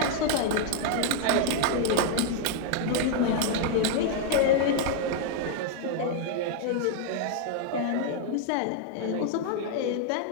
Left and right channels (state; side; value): different; both; correlation -0.01